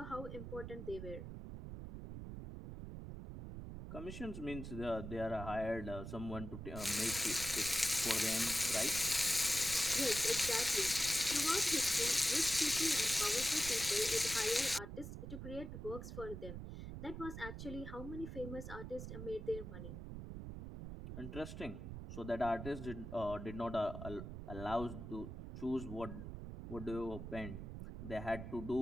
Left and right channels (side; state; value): right; noise; rumble, 8 dB below the sound